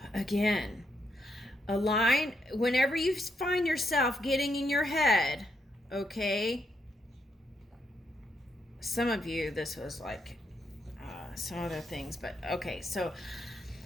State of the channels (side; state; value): both; normal; correlation 0.79